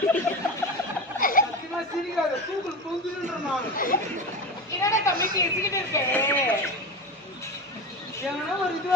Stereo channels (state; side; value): normal; both; correlation 0.25